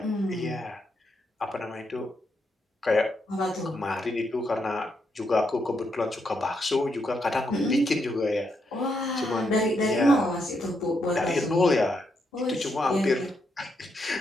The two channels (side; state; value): both; normal; correlation 0.79